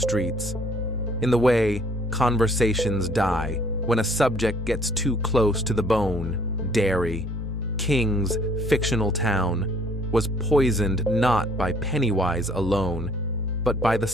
in the way conversations die when a subject gets too close to the bone. Derry, King's fictional town, was poisoned not by Pennywise alone, but by the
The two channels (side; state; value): both; normal; correlation 0.59